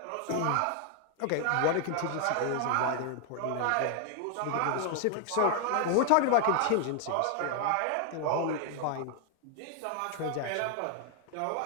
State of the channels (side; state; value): both; different; correlation 0.00